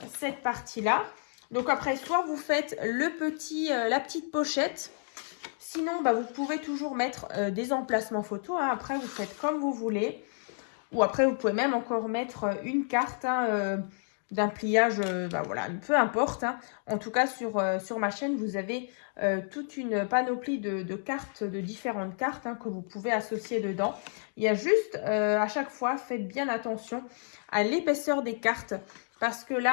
cette partie-là. Donc après, soit vous faites la petite pochette. Sinon, bah, vous pouvez toujours mettre des emplacements photos. Hein. Après, vous faites comme vous voulez. Ou après, vous pouvez même encore mettre une carte d'un pliage, bah, voilà, peu importe. Hein. En tout cas, sur ma chaîne, vous avez toute une panoplie de cartes, de différentes cartes que vous pouvez associer dedans. Il y a juste, à chaque fois, faites bien attention à l'épaisseur des cartes. Parce que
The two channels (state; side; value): silent; right; digital silence